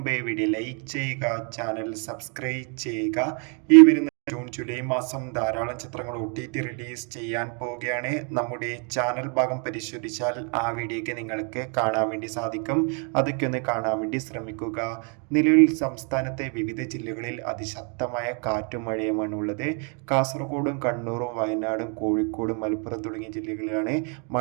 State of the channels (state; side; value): quieter; left; 38.3 dB